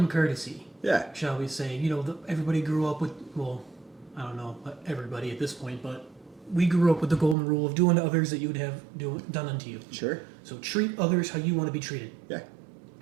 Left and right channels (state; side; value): drops out; left; at 7.4 s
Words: courtesy, Yeah. shall we say? Everybody grew up with, well, I don't know, but everybody at this point, but we grew up with the golden rule of doing to others that you would have done unto you. Sure. So treat others how you want to be treated. Yeah.